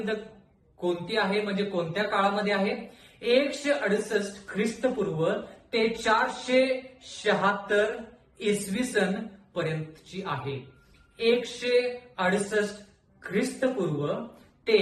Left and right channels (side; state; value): both; identical; correlation 1.00